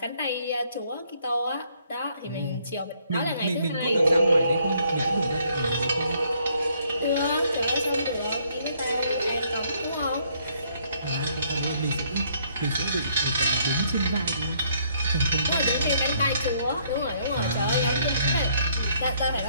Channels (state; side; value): inverted; both; correlation -0.67